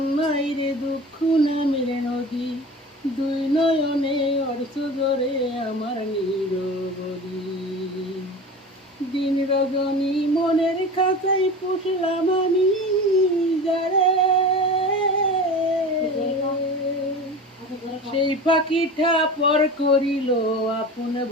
নয় রে দুঃখ নামের নদী, দুই নয়নে অর্থ ধরে আমার নিরবধি। দিন রজনী মনের খাঁচাই পুষলাম আমি, যারে সেই পাখিটা পর করিল আপন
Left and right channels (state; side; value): normal; both; correlation 0.33